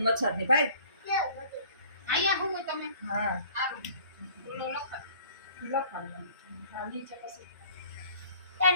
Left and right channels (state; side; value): inverted; both; correlation -0.52